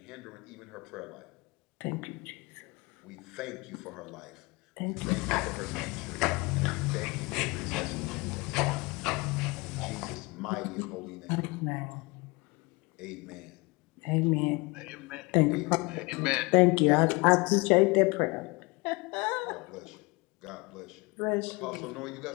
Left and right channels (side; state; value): right; quieter; 25.6 dB